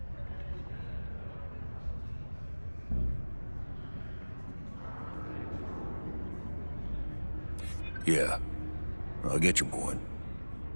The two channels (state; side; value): inverted; both; correlation -1.00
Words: Yeah, I'll get your point.